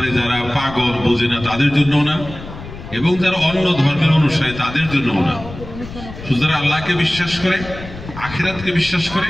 যারা পাগল বোঝে না তাদের জন্যও না, এবং যারা অন্য ধর্মের অনুসারী তাদের জন্যও না। শুধু যারা আল্লাহকে বিশ্বাস করে, আখিরাতকে বিশ্বাস করে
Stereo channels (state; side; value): noise; left; rumble, 13 dB below the sound